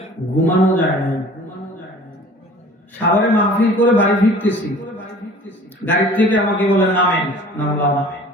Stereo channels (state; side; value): normal; both; correlation 0.47